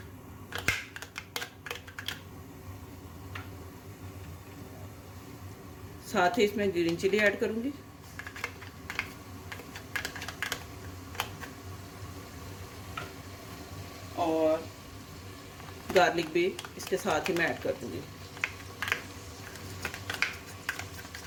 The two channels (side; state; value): both; identical; correlation 1.00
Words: साथ ही इसमें ग्रीन चिली ऐड करूँगी। और गार्लिक भी इसके साथ ही मैं ऐड कर दूँगी।